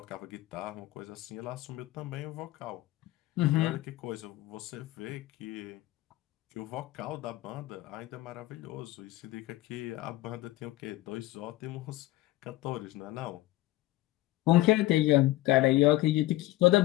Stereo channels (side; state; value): right; quieter; 17.3 dB